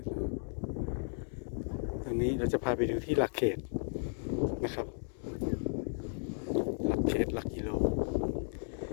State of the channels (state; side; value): silent; right; digital silence